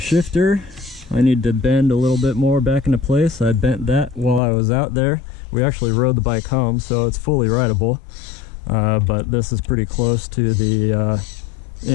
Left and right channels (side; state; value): right; drops out; at 4.4 s